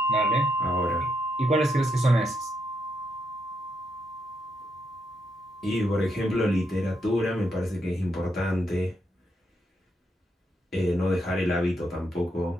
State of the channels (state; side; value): normal; both; correlation 0.79